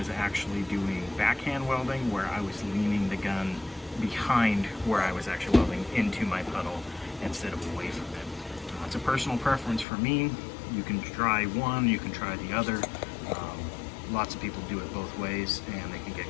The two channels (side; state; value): right; drops out; at 9.9 s